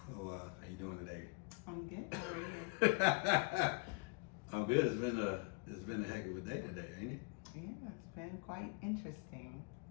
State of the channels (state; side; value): quieter; right; 29.2 dB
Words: how you doing today? I'm good. How are you? I'm good. It's been a heck of a day today, ain't it? Yeah, it's been quite interesting,